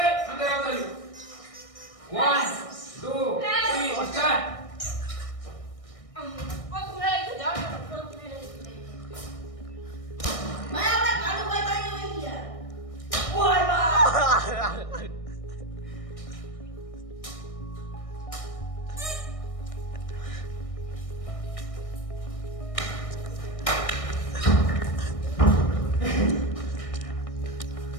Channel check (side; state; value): right; late; 1.6 ms